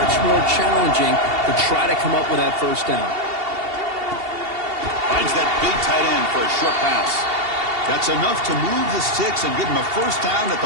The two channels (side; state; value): left; late; 2.7 ms